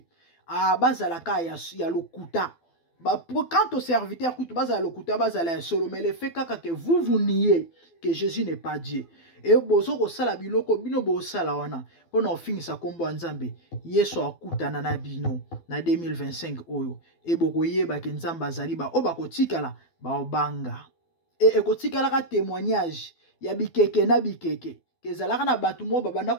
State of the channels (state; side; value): late; right; 12 ms